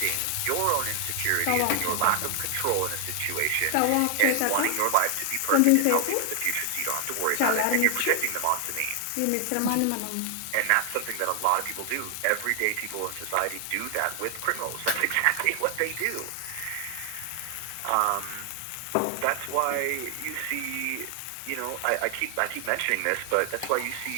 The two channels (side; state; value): both; different; correlation 0.00